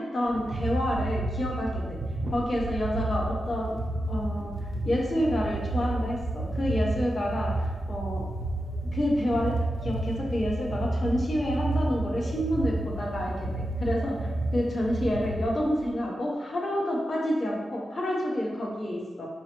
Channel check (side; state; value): both; normal; correlation 0.89